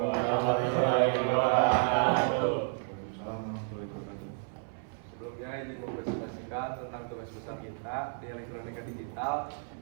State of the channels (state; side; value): silent; left; 57 dB below the other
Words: warahmatullahi wabarakatuh. Sebelumnya izin mempresentasikan tentang tugas besar kita di elektronika digital,